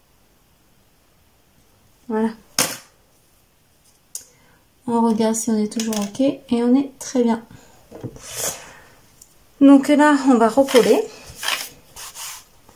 Voilà. On regarde si on est toujours ok et on est très bien. Donc là, on va recoller.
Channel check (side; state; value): both; identical; correlation 1.00